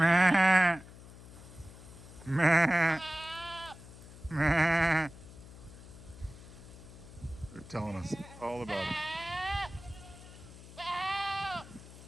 Meh. telling us all about it.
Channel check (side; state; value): left; noise; hum, 17 dB below the sound